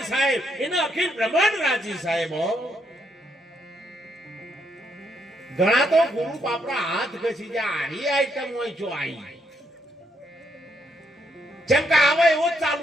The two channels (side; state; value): both; normal; correlation 0.76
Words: સાહેબ એનો અખિલ બ્રહ્માંડ રાજી સાહેબ. ઘણા તો ગુરુ બાપરા હાથ ઘસી જાય. આરી આઈટમ હોય જો આઈ જેમ કે આવે એવો જ